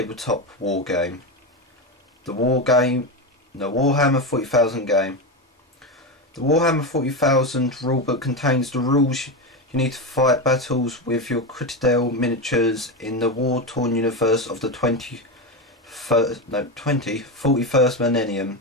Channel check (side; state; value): both; normal; correlation 0.15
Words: war game. The Warhammer 40,000 game. The Warhammer 40,000 rulebook contains the rules you need to fight battles with your Citadel miniatures in the war-torn universe of the 41st millennium.